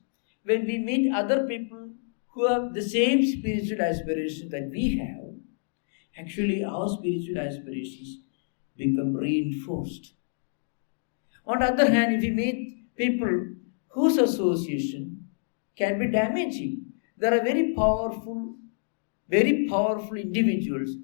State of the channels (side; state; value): right; silent; digital silence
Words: when we meet other people who have the same spiritual aspirations that we have, actually our spiritual aspirations become reinforced. On the other hand, if we meet people whose association can be damaging, there are very powerful individuals